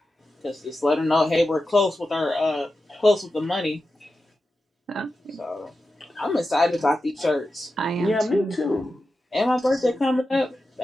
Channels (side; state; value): both; normal; correlation 0.91